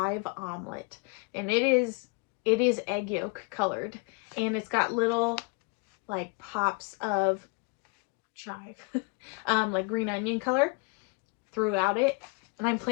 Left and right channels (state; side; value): quieter; right; 30.8 dB